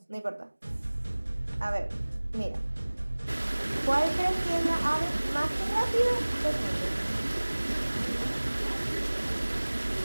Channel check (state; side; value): inverted; both; correlation -1.00